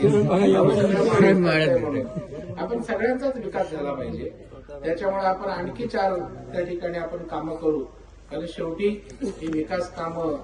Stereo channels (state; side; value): identical; both; correlation 1.00